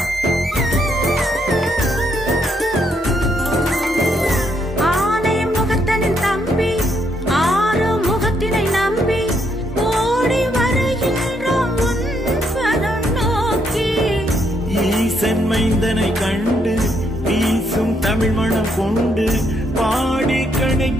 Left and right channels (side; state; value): both; normal; correlation 0.75